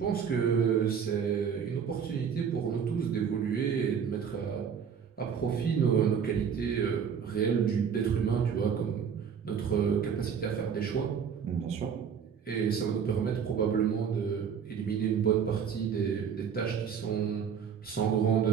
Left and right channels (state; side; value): quieter; left; 7.2 dB